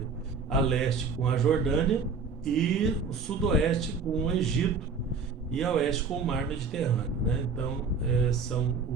A leste com a Jordânia e o sudoeste com o Egito e a oeste com o mar Mediterrâneo, né? Então são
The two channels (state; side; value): quieter; left; 4.9 dB